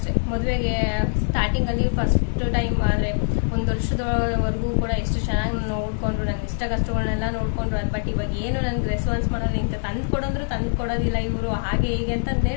ಮದುವೆಗೆ ಸ್ಟಾರ್ಟಿಂಗ್ ಅಲ್ಲಿ ಫಸ್ಟ್ ಟೈಮ್ ಆದ್ರೆ 1 ವರ್ಷದವರೆಗೂ ಕೂಡ ಎಷ್ಟು ಚೆನ್ನಾಗಿ ನೋಡ್ಕೊಂಡ್ರು, ನನ್ ಇಷ್ಟ ಕಷ್ಟಗಳನ್ನೆಲ್ಲ ನೋಡ್ಕೊಂಡ್ರು. ಬಟ್ ಇವಾಗ ಏನು ನನ್ಗೆ ರೆಸ್ಪಾನ್ಸ್ ಮಾಡೋದು, ಇಂತ ತಂದು ಕೊಡೋದ್ರು ತಂದು ಕೊಡೋದಿಲ್ಲ ಇವರು, ಹಾಗೆ ಹೀಗೆ ಅಂತಂದ್ರೆ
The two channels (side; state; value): right; silent; 63 dB below the other